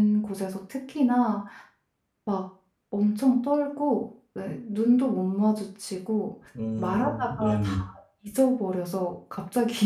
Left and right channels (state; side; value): identical; both; correlation 1.00